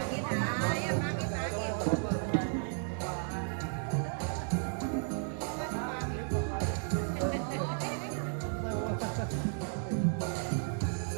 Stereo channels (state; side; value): silent; left; 55 dB below the other